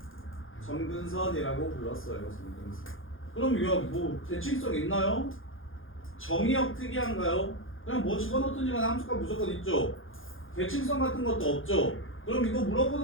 점근선이라고 불렀어요. 점근선. 그럼 이거 뭐 대칭성 있나요? 정의역 특이한가요? 그냥 뭐 집어넣든지 간에 함수값 무조건 있죠. 대칭성 같은 것도 없죠. 그럼 이거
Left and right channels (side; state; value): right; late; 0.59 ms